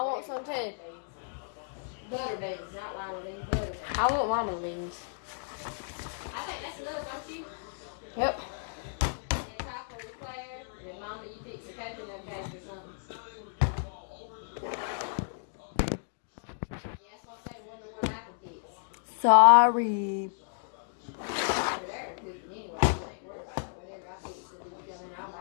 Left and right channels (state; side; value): silent; right; digital silence